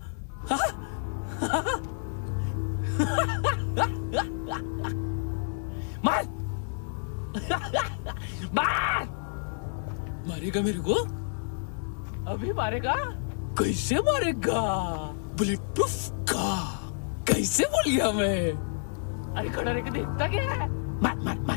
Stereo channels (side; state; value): right; silent; digital silence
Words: मार मार मारेगा मेरे को? अभी मारेगा? कैसे मारेगा? बुलेट प्रूफ का कैसे बोल गया मैं? अरे खड़ा रह के देखता क्या है? मार मार